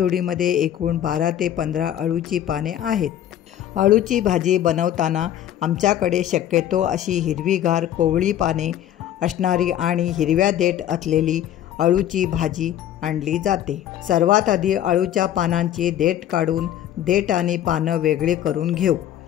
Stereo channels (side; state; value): right; quieter; 11.2 dB